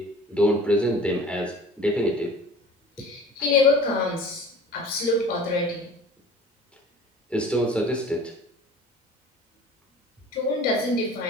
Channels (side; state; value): both; normal; correlation 0.44